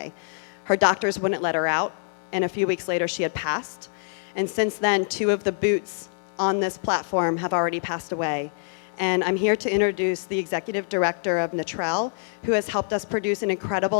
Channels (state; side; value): silent; right; 59 dB below the other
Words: Her doctors wouldn't let her out, and a few weeks later she had passed. And since then, 2 of the boots on this platform have already passed away. And I'm here to introduce the executive director of Natrel, who has helped us produce an